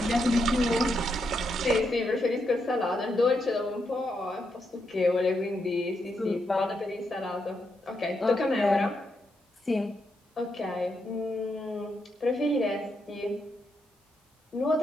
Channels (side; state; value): both; normal; correlation 0.81